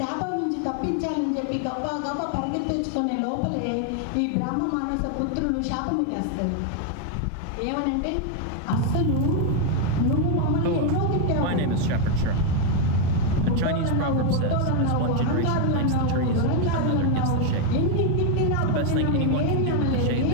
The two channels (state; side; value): different; both; correlation 0.01